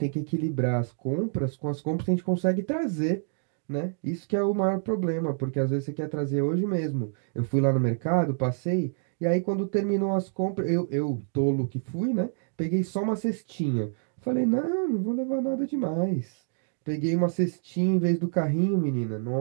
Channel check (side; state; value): left; silent; digital silence